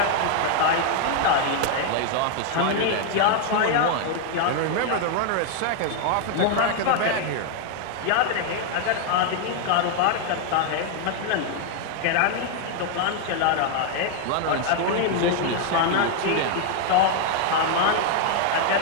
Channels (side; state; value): both; different; correlation 0.00